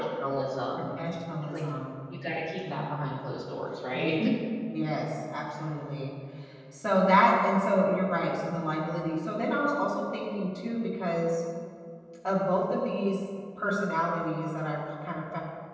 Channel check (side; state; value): both; identical; correlation 1.00